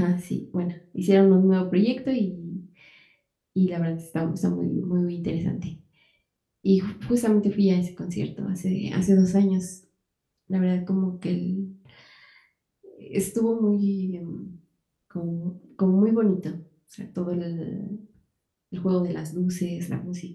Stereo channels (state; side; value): identical; both; correlation 1.00